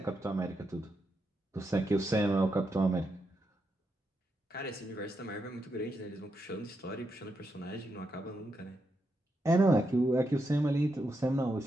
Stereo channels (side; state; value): both; normal; correlation 0.83